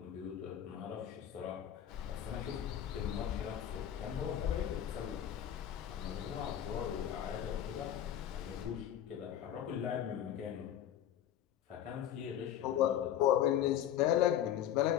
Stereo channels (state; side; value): quieter; right; 10.7 dB